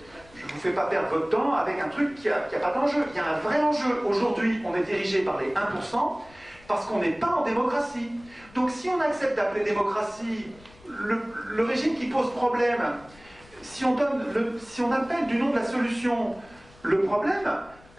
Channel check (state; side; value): noise; left; rumble, 25 dB below the sound